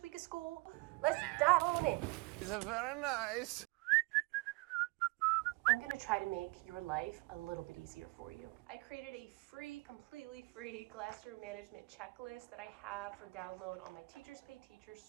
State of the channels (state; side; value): quieter; left; 24.7 dB